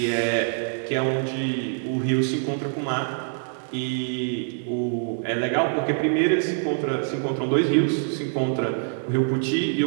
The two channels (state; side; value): silent; left; digital silence